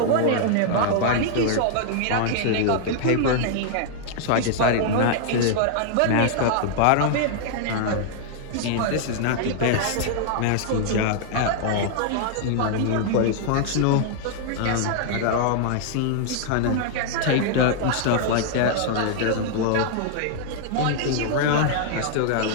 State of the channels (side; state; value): both; different; correlation -0.01